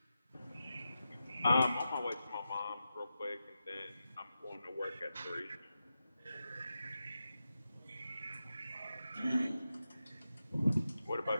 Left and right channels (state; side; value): inverted; both; correlation -0.90